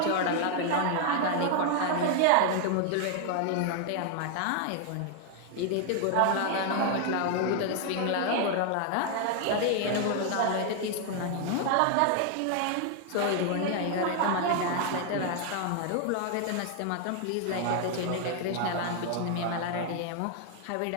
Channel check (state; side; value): different; both; correlation 0.00